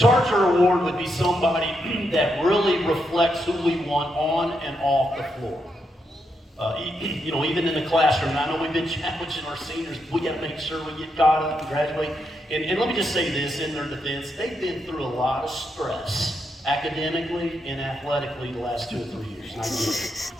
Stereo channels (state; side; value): normal; both; correlation 0.81